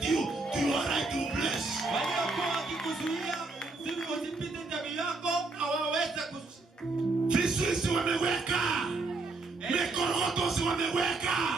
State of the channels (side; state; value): left; quieter; 3.5 dB